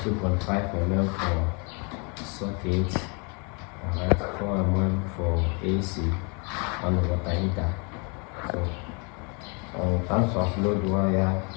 mm for socket, alright, 4 mm for AC and water heater. So in terms of load wire,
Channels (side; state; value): right; quieter; 33.7 dB